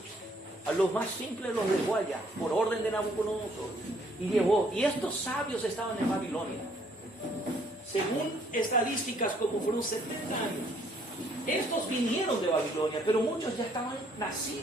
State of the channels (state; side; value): normal; both; correlation 0.65